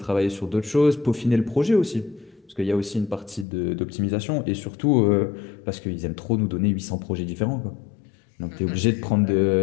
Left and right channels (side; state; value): right; drops out; at 3.5 s